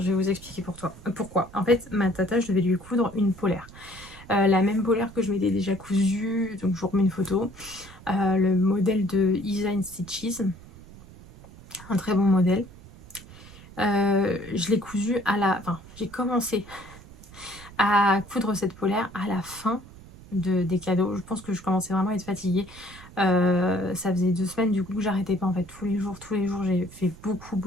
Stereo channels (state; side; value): noise; right; rumble, 19 dB below the sound